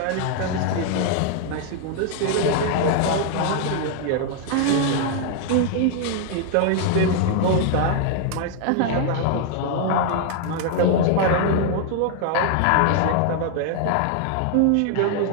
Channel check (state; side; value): different; both; correlation 0.00